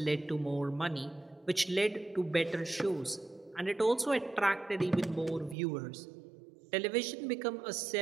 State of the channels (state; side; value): drops out; left; at 5.6 s